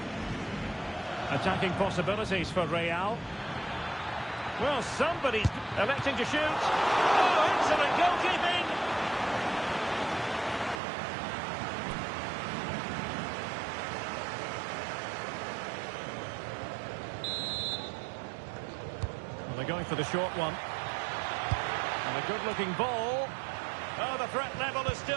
Attacking possibilities for Real. Well, somebody's electing to shoot. Oh, excellent goalkeeping! Well, they're going for the short one. And a good-looking ball. Oh, the threat level is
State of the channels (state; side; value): drops out; left; at 10.8 s